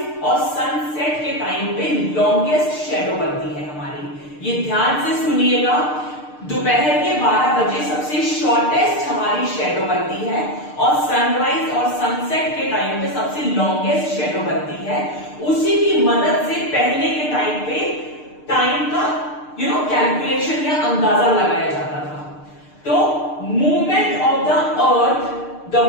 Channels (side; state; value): right; late; 6.6 ms